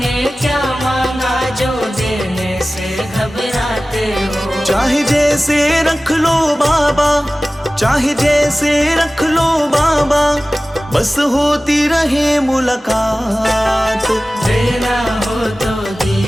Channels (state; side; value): normal; both; correlation 0.97